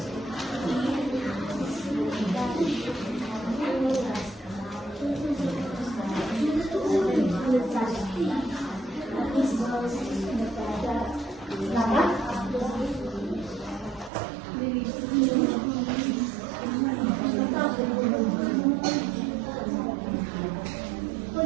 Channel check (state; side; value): drops out; left; at 14.1 s